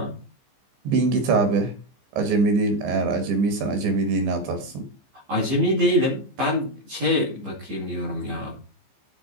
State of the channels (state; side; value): late; left; 15 ms